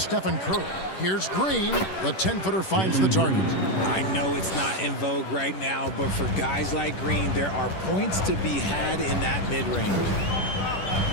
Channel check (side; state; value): right; late; 10 ms